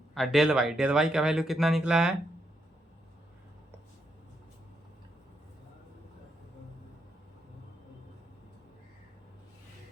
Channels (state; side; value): normal; both; correlation 0.80